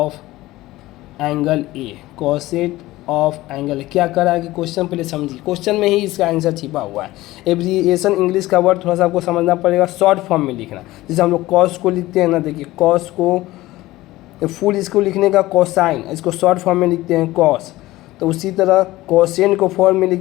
angle A. Cosine of angle क्या कर रहा है कि क्वेश्चन पहले समझिए, क्वेश्चन में ही इसका आंसर छिपा हुआ है। एब्रीविएशन इंग्लिश का वर्ड थोड़ा सा आपको समझना पड़ेगा, शॉर्ट फॉर्म में लिखना। जैसे हम लोग कॉस को लिखते हैं ना, देखिए कॉस को फुल इसको लिखने का कोसाइन, इसको शॉर्ट फॉर्म में लिखते हैं कॉस। तो उसी तरह कोसेंट को फॉर्म में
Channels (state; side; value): quieter; right; 17.6 dB